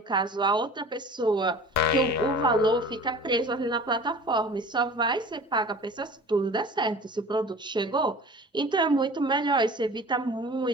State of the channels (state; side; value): normal; both; correlation 0.42